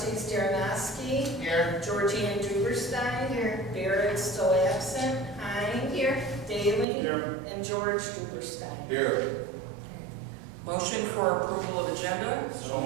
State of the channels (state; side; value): drops out; left; at 6.9 s